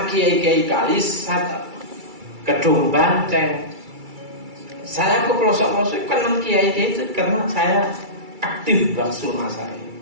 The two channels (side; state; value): left; late; 2.3 ms